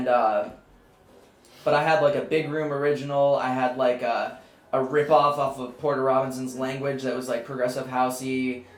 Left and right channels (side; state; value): both; identical; correlation 1.00